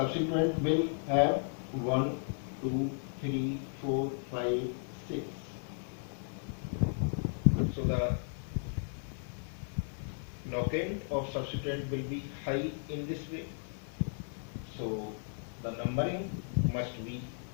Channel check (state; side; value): silent; right; 55 dB below the other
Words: will have 1, 2, 3, 4, 5, 6. So the locant of subsequent will be high in this way. So the numbering must be